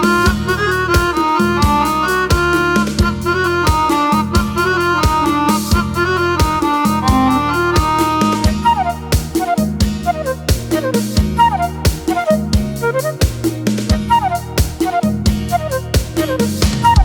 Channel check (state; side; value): identical; both; correlation 1.00